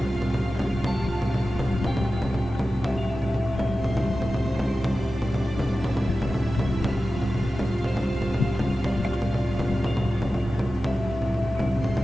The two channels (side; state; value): both; normal; correlation 0.94